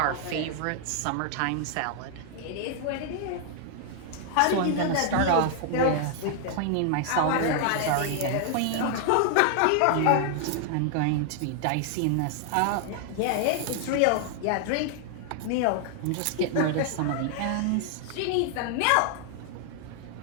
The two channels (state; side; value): different; both; correlation 0.00